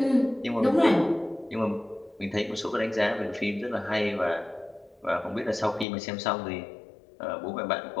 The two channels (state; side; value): drops out; right; at 5.9 s